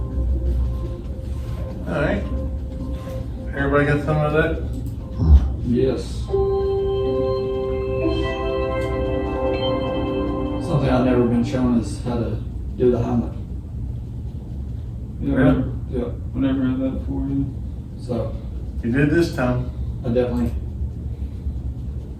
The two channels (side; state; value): both; identical; correlation 1.00